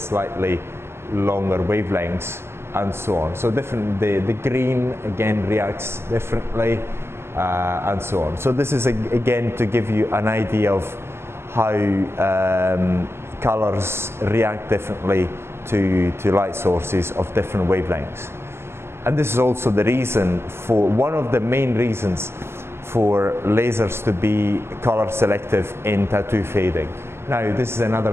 longer wavelengths, and so on. So different. The green again reacts differently. And so on. So this is again to give you an idea of how colors react differently to light sources of different wavelengths. And this is also the reason for, one of the main reasons for lasers to be color selective in tattoo fading. Now this is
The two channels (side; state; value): left; late; 0.12 ms